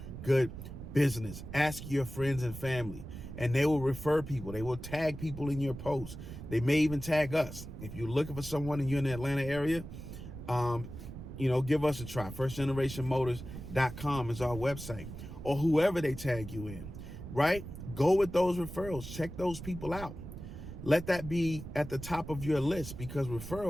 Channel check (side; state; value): right; noise; rumble, 11 dB below the sound